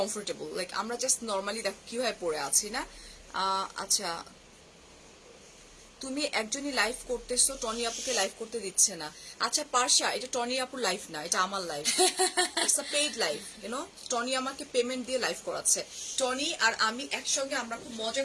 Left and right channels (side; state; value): both; identical; correlation 1.00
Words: লাইক আমরা জাস্ট নর্মালি দেখো কিভাবে পরে আছি না? আচ্ছা, তুমি একজনই লাইভ করতেছো, টনি আপুকে লাইভ করতে দিচ্ছে না। আচ্ছা পার্শা, এটা টনি আপুর লাইভ না, এটা আমার live, it's a paid live, you know. Tony আমাকে পেমেন্ট দিয়ে লাইভ করাচ্ছে। টনি আর আমি একসঙ্গে আমরা খুব মজা